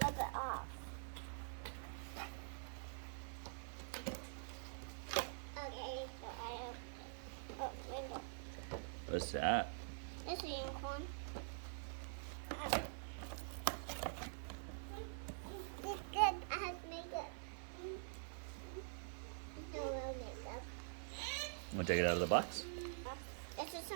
rub it off. Okay, so I open it. Oh, window. What's that? It's a unicorn. It's good. I have makeup. No real makeup. Want to take it out of the box? This is a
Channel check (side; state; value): left; silent; digital silence